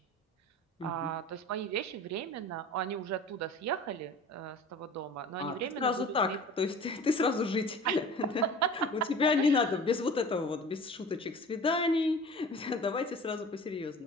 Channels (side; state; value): both; normal; correlation 0.41